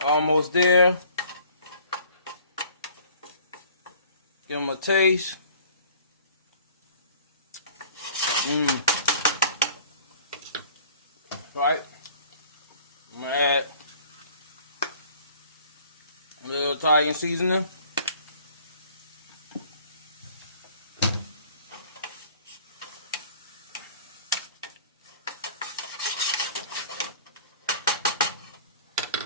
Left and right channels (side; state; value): both; inverted; correlation -0.51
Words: almost there. Give them a taste. Right. I'm gonna add a little Italian seasoning.